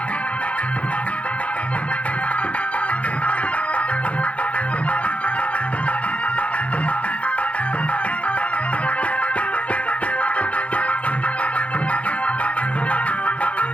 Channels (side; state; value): right; late; 0.063 ms